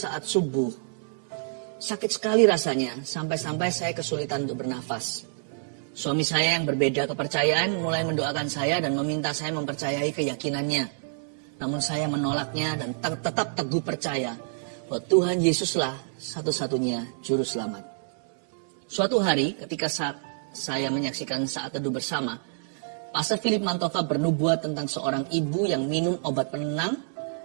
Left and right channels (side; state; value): left; silent; 60 dB below the other